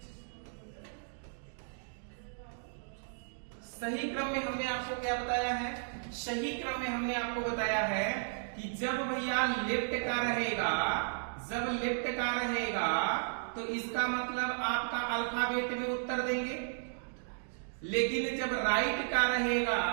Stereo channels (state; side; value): silent; left; digital silence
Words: सही क्रम में हमने आपको क्या बताया है, सही क्रम में हमने आपको बताया है कि जब भैया लेफ्ट का रहेगा, जब लेफ्ट का रहेगा तो इसका मतलब आपका अल्फाबेट में उत्तर देंगे, लेकिन जब राइट का रहेगा